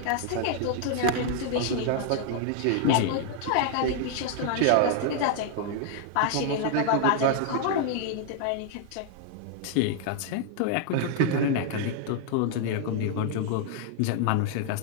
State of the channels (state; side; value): different; both; correlation 0.00